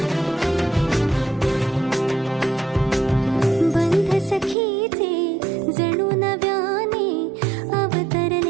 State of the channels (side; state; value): left; drops out; at 4.5 s